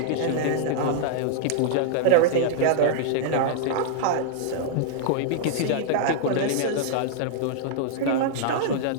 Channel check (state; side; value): different; both; correlation -0.01